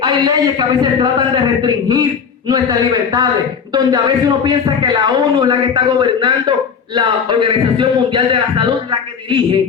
hay leyes que a veces tratan de restringir nuestras libertades, donde a veces uno piensa que la ONU es la que está gobernando, la Organización Mundial de la Salud es la que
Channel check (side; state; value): right; quieter; 6.6 dB